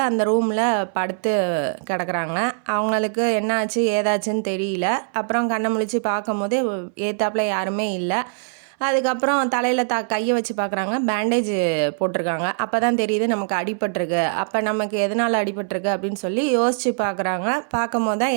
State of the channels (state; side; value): silent; left; 64 dB below the other